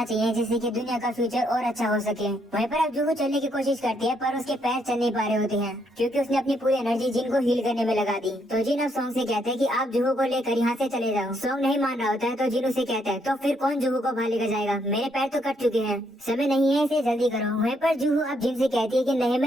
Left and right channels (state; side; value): normal; both; correlation 0.73